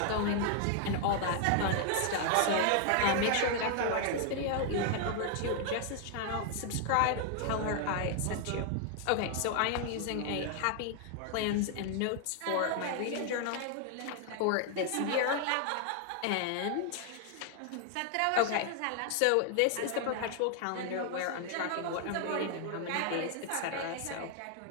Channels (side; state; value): both; different; correlation 0.00